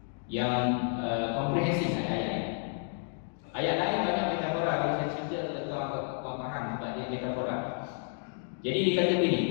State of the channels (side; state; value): right; silent; 57 dB below the other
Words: komprehensif ayat ini. Ayat lain banyak metafora. Kalau saya cerita tuan faham sebab dia metafora. Jadi dia kata